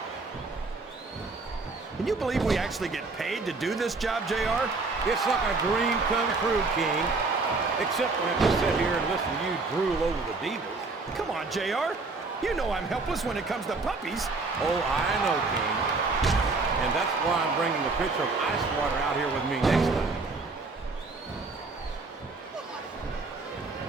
Can you believe we actually get paid to do this job, JR? It's like a dream come true, King. Except when I have to sit here and listen to you drool over the divas. Come on, JR. You know I'm helpless when it comes to puppies. Oh, I know, King. And that's why I'm bringing a pitcher of ice water out here with me next time.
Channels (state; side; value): quieter; left; 3.8 dB